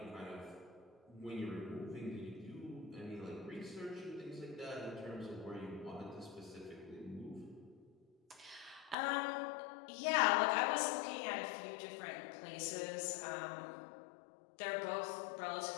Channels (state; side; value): drops out; right; at 9.0 s